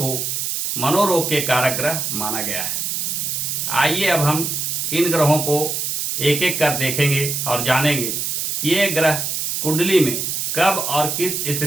मनोरोग के कारक ग्रह माना गया है। आइए अब हम इन ग्रहों को एक एक कर देखेंगे और जानेंगे कि ये ग्रह कुंडली में कब और किस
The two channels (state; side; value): noise; right; hiss, 1 dB below the sound